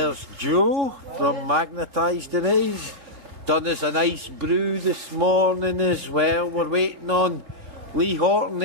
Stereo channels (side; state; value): left; late; 3.1 ms